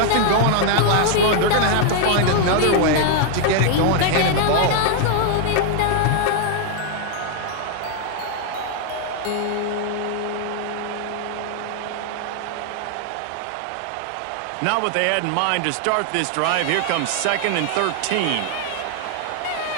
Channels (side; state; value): both; different; correlation 0.00